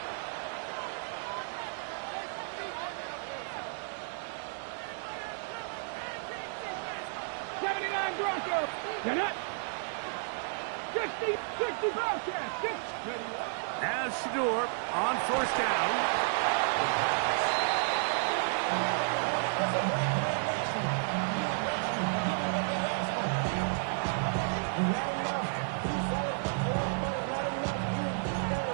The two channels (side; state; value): left; silent; digital silence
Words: Broncos. You're not 60 Bobcats. As Shador on first down.